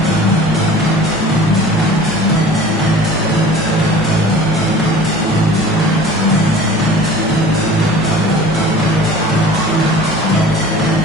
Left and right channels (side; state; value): both; normal; correlation 0.43